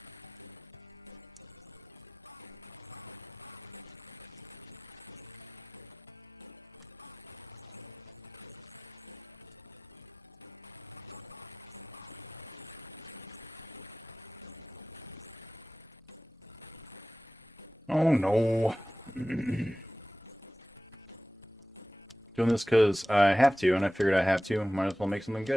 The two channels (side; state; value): both; normal; correlation 0.95